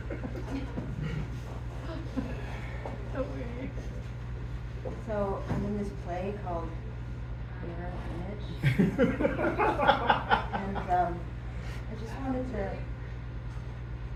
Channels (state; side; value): identical; both; correlation 1.00